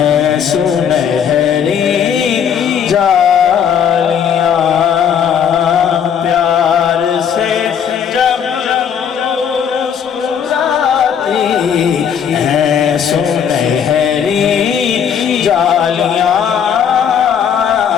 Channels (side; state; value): right; quieter; 8.0 dB